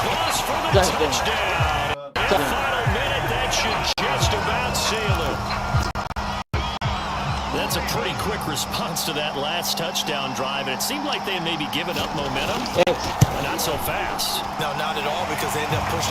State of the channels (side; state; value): both; identical; correlation 1.00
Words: for the touchdown. In the final minute, that should just about seal it. That's a pretty quick response to that last touchdown drive, and it seemed like they had maybe given up momentum, but not so fast. No, not at all, because they ended up